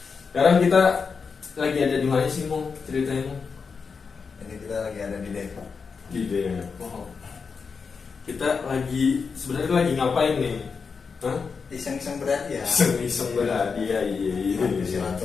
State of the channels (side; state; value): right; quieter; 5.4 dB